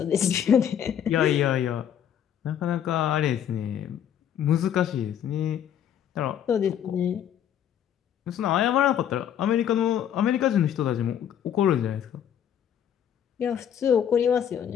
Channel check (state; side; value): quieter; right; 9.5 dB